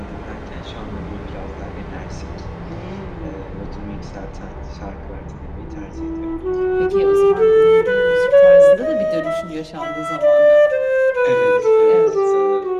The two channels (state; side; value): identical; both; correlation 1.00